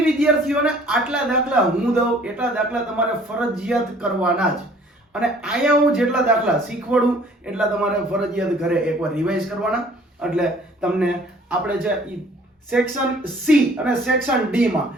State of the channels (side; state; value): both; normal; correlation 0.54